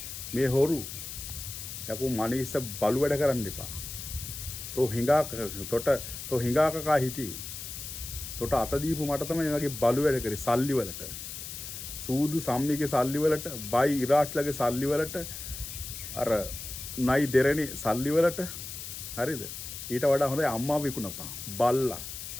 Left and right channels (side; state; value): left; noise; hiss, 9 dB below the sound